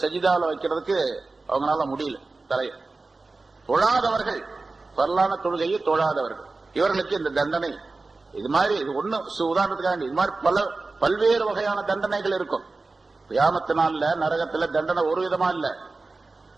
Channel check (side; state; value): left; quieter; 3.6 dB